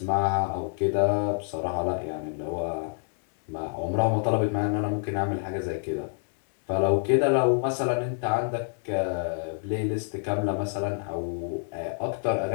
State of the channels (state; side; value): silent; right; digital silence